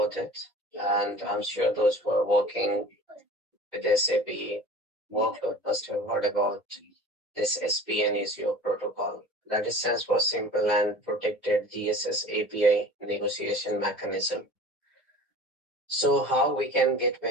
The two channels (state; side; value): normal; both; correlation 0.41